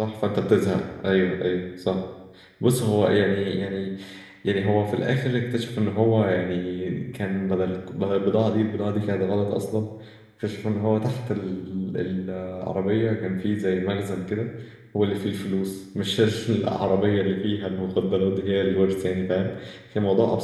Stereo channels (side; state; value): both; identical; correlation 1.00